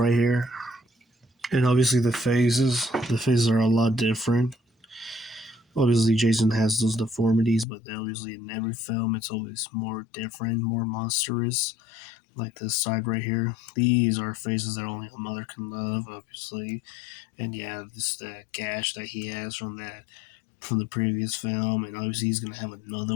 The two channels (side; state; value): right; drops out; at 7.7 s